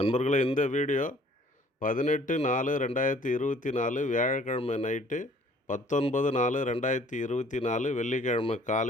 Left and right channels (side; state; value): both; normal; correlation 0.56